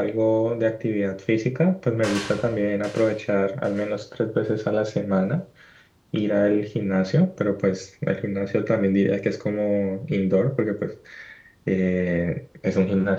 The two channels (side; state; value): both; identical; correlation 1.00